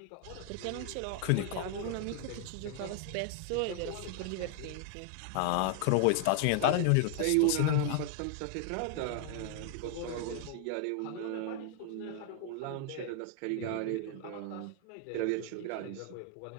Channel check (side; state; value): both; different; correlation 0.00